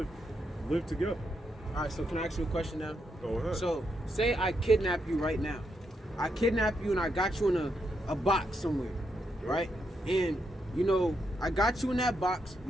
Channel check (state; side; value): normal; both; correlation 0.81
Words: live together. All right, so can I ask you a question now? Go ahead. So, say I kidnap you right now. I kidnap you and I got you in a box somewhere, right? And, you know, I got you in that box.